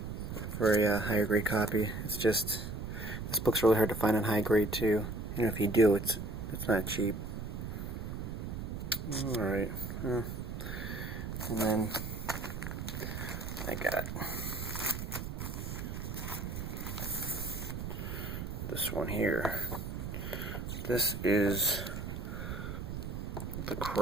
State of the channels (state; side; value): noise; right; rumble, 6 dB below the sound